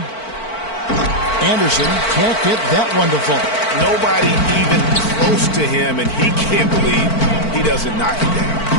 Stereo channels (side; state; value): right; late; 4.5 ms